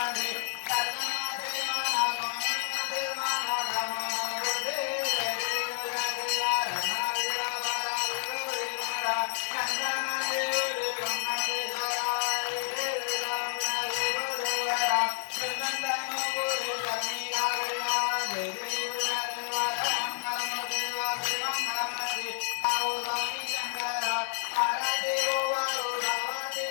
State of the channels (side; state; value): right; silent; 58 dB below the other